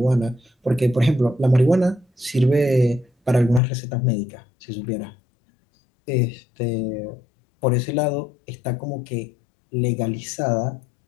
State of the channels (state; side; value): drops out; right; at 3.6 s